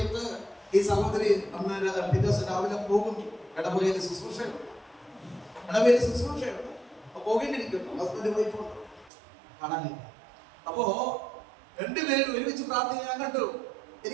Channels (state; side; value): drops out; left; at 9.1 s